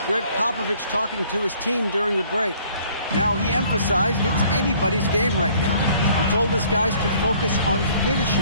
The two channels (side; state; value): both; inverted; correlation -0.58